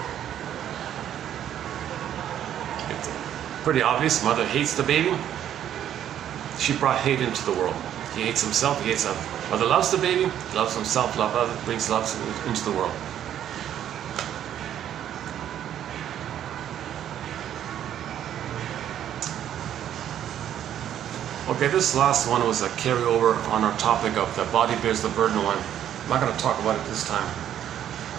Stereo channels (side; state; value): left; quieter; 10.6 dB